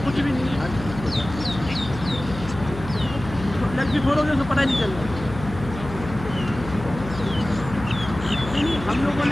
कुछ भी नहीं है, लग भी फोड़ोगे तो पता ही नहीं चलेगा। हम लोगों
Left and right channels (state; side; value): noise; left; hum, 11 dB below the sound